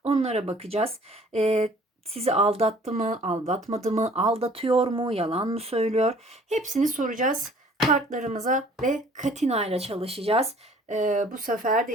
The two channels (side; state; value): both; normal; correlation 0.54